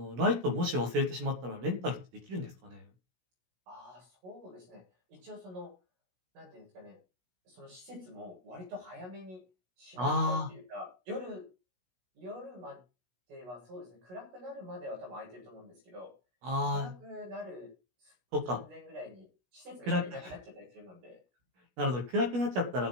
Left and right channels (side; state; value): left; late; 16 ms